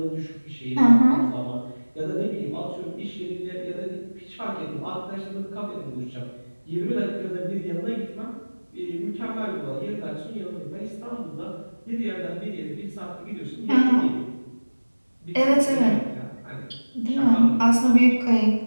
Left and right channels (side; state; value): both; inverted; correlation -1.00